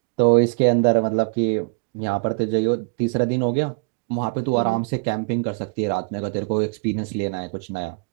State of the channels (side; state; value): left; quieter; 34.1 dB